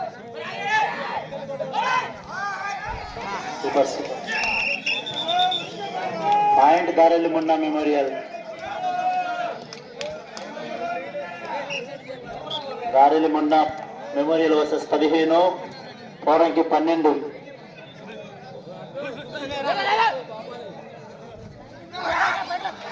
సూపర్ సూపర్. పాయింట్ దారెల్లి మున్నా మెమోరియల్. దారెల్లి మున్నా మెమోరియల్ వర్సెస్ 15, పోరంకి 12.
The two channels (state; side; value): identical; both; correlation 1.00